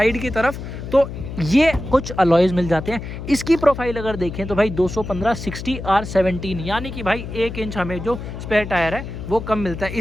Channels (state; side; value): noise; left; hum, 8 dB below the sound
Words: की तरफ तो ये कुछ अलॉयज मिल जाते हैं। इसकी प्रोफाइल अगर देखें तो भाई 215/60 R17, यानी कि भाई 1 इंच हमें जो स्पेयर टायर है वो कम मिलता है।